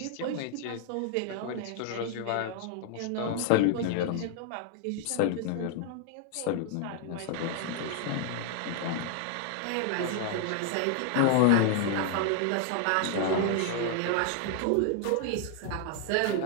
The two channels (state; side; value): different; both; correlation 0.00